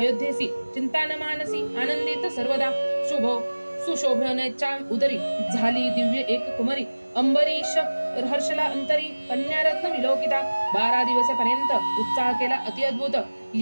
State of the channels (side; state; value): both; inverted; correlation -1.00